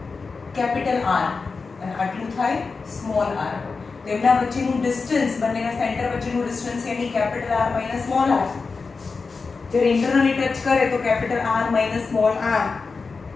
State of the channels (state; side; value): quieter; right; 4.5 dB